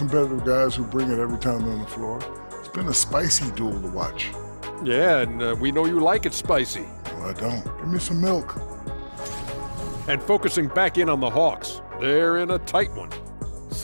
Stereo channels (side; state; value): both; inverted; correlation -1.00